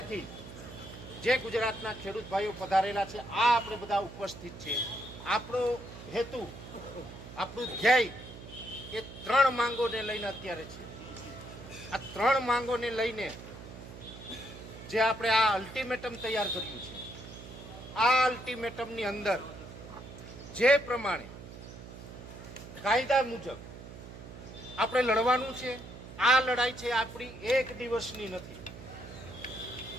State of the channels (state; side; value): noise; right; hum, 14 dB below the sound